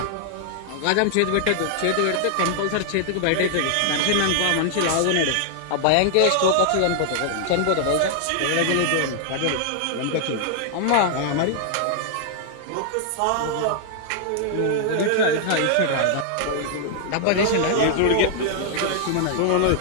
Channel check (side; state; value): both; different; correlation 0.00